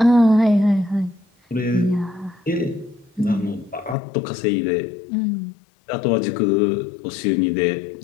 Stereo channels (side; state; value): right; drops out; at 4.0 s